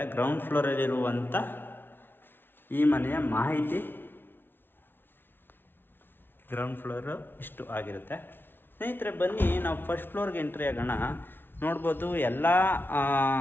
ಗ್ರೌಂಡ್ ಫ್ಲೋರಲ್ಲಿರುವಂಥ ಈ ಮನೆಯ ಮಾಹಿತಿ ಗ್ರೌಂಡ್ ಫ್ಲೋರು ಇಷ್ಟು ಆಗಿರುತ್ತೆ ಸ್ನೇಹಿತರೆ. ಬನ್ನಿ, ನಾವು ಫಸ್ಟ್ ಫ್ಲೋರ್ಗೆ ಎಂಟ್ರಿ ಆಗೋಣ. ನೋಡ್ಬೋದು, ಎಲ್ಲ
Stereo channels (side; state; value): right; late; 0.10 ms